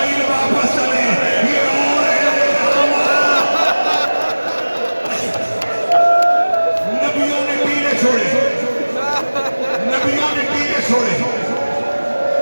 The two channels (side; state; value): both; inverted; correlation -1.00